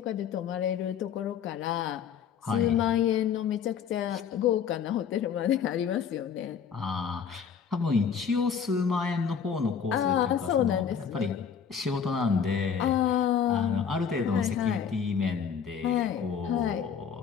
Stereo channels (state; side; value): quieter; right; 7.3 dB